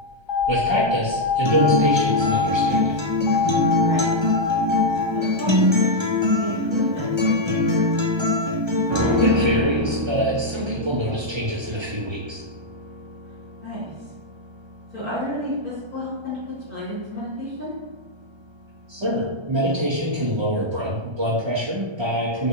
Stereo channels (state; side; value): late; left; 1.3 ms